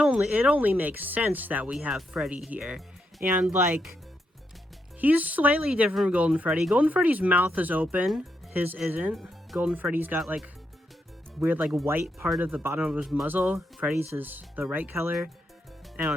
makes sense that we have Freddy here, and, like, he's slightly different from Golden Freddy. Golden Freddy's mouth is open, his isn't. Golden Freddy's got, like, weird, like, white part of the bottom of his muzzle. Freddy's is the right color. I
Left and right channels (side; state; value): both; normal; correlation 0.81